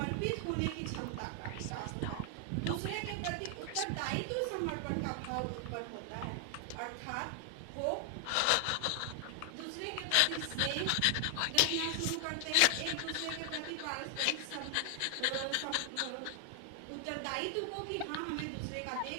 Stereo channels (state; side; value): different; both; correlation 0.00